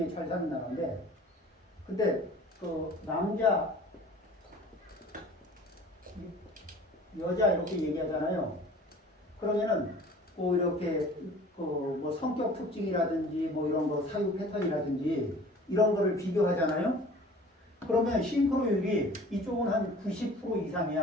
잘 사는 나라인데 근데 그 남자 여자 이렇게 얘기하잖아요. 그러면은 뭐 이렇게 뭐 성격 특징이라든지 뭐 이런 거 사유 패턴이라든지 이런 거를 비교하잖아요. 그러면 싱크로율이 이쪽은 한 90%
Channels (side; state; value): both; normal; correlation 0.46